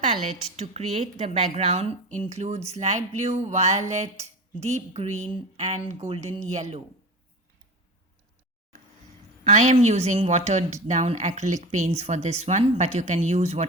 to create the background includes light blue, violet, deep green and golden yellow. I am using watered down acrylic paints for this one, but you can use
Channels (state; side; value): normal; both; correlation 0.29